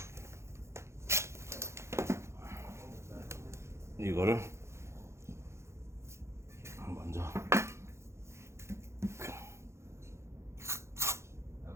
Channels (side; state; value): left; late; 0.13 ms